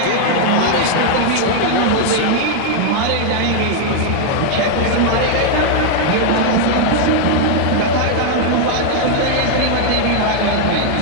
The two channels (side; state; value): both; different; correlation 0.00